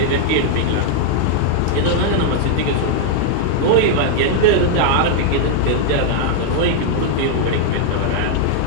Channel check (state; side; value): different; both; correlation 0.00